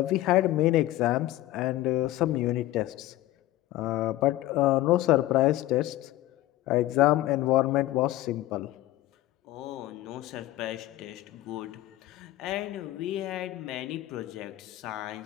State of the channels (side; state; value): right; quieter; 15.9 dB